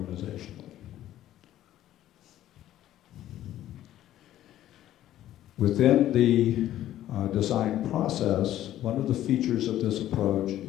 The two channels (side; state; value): right; quieter; 13.0 dB